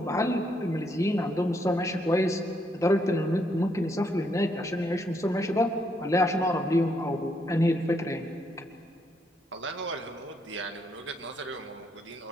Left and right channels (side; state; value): both; normal; correlation 0.75